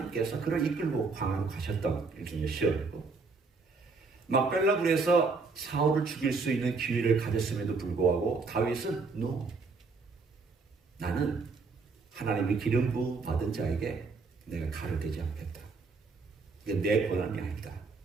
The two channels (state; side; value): quieter; left; 4.3 dB